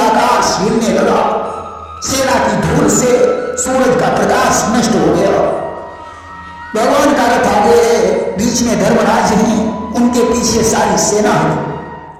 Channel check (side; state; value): both; identical; correlation 1.00